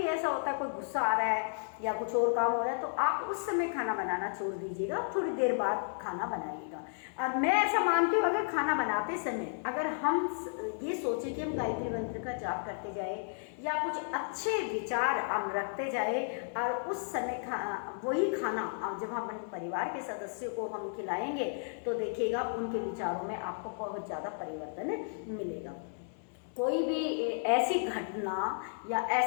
ऐसा होता है कोई गुस्सा आ रहा है या कुछ और काम हो रहा है, तो आप उस समय खाना बनाना छोड़ दीजिएगा, थोड़ी देर बाद खाना बनाइएगा। और मैं ऐसा मानती हूँ, अगर खाना बनाते समय अगर हम ये सोचें कि हम गायत्री मंत्र का जाप करते जाए या कुछ अच्छे विचार हम रखते जाए और उस समय वही खाना जब हम अपने परिवार के सदस्यों को हम खिलाएंगे तो देखिएगा उनके विचारों में आपको बहुत ज़्यादा परिवर्तन मिलेगा। कोई भी ऐसी घटना या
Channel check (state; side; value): silent; right; digital silence